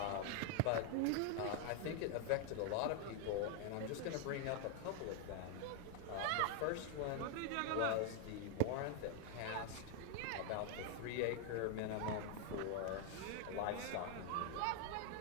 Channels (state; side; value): different; both; correlation 0.00